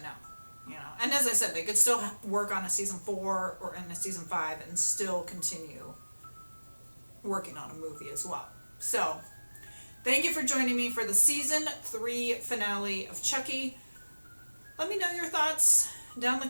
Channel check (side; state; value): both; inverted; correlation -1.00